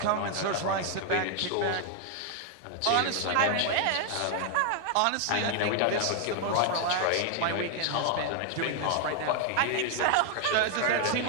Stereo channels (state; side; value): different; both; correlation 0.00